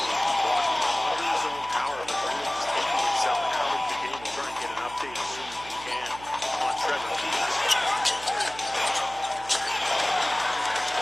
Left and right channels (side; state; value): right; noise; hum, 18 dB below the sound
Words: walking him under his own power, but really just taking himself out of the game. We'll try and get an update as soon as we can on Trevor Keels.